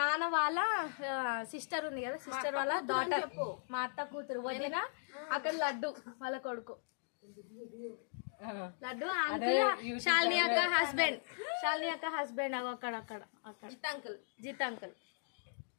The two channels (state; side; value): silent; right; digital silence